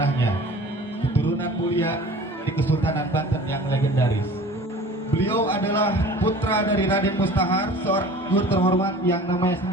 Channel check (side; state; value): both; normal; correlation 0.43